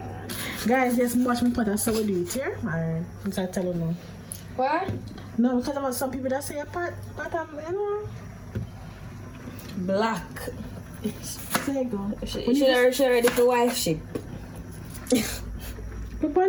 Guys, just watch me put a so we do it here. Alright, I'm trying to tell you now. What? No, because there are some people that say a pot, you know. Black. There you go. She ready for wife ship. She's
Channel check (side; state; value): both; identical; correlation 1.00